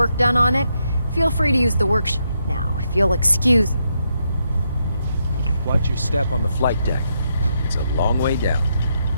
done on it, feel free to use the workshop. Now, if you'll excuse... Watch your step on the flight deck. It's a long way down.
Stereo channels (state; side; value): inverted; both; correlation -0.80